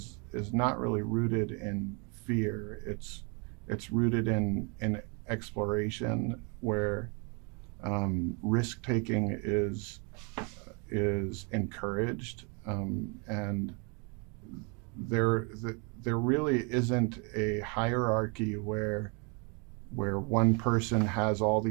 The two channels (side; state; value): left; quieter; 34.1 dB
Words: not really rooted in fear. It's rooted in exploration, where risk taking is encouraged, and there there really isn't a hierarchy where one person has all